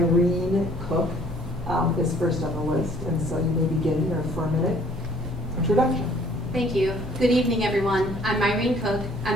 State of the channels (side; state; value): both; normal; correlation 0.58